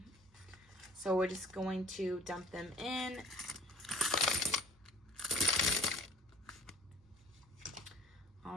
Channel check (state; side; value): normal; both; correlation 0.51